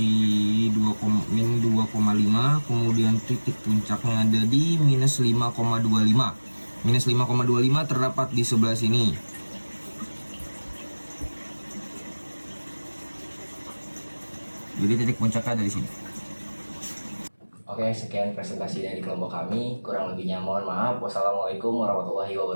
min 2,5, kemudian titik puncaknya ada di minus 5,25. Minus 5,25 terdapat di sebelah sini. Jadi titik puncaknya dari sini. Oke, sekian presentasi dari kelompok kami. Kurang lebihnya mohon maaf. Wassalamualaikum warahmatullahi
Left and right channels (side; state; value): both; inverted; correlation -1.00